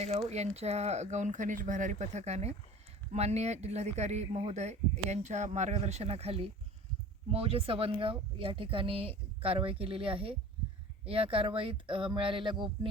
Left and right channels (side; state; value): both; normal; correlation 0.41